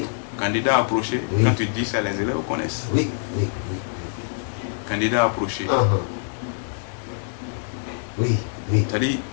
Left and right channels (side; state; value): right; silent; digital silence